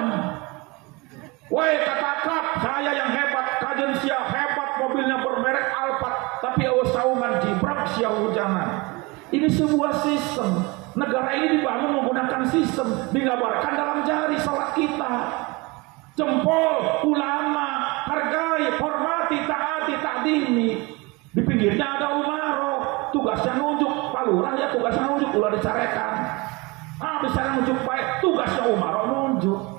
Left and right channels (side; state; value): left; quieter; 25.5 dB